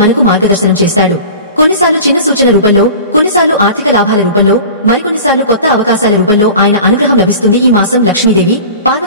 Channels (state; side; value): inverted; both; correlation -0.38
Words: మనకు మార్గదర్శనం చేస్తాడు. కొన్నిసార్లు చిన్న సూచన రూపంలో, కొన్నిసార్లు ఆర్థిక లాభాల రూపంలో, మరికొన్నిసార్లు కొత్త అవకాశాల రూపంలో ఆయన అనుగ్రహం లభిస్తుంది. ఈ మాసం లక్ష్మీదేవి,